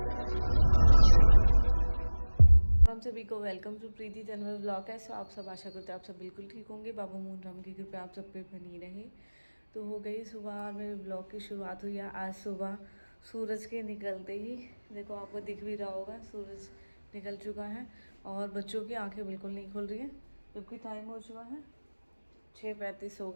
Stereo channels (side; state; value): both; inverted; correlation -1.00